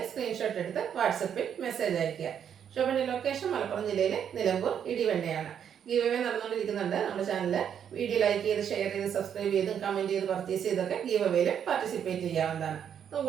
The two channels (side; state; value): left; quieter; 8.5 dB